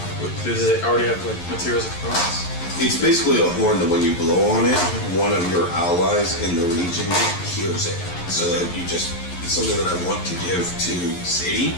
Does it already have like materials and components? It's basically a horn that when you blow on it, one of your allies in the region hears it. So that you just, it's something that I want to give to Sadie.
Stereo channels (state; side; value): late; right; 11 ms